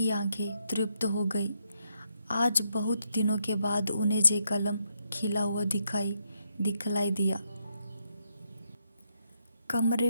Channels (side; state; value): both; inverted; correlation -0.78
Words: आंखें तृप्त हो गई। आज बहुत दिनों के बाद उन्हें जे कलम खिला हुआ दिखलाई दिया। कमरे